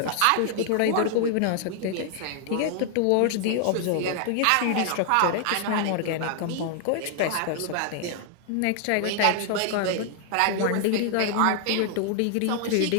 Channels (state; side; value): different; both; correlation 0.00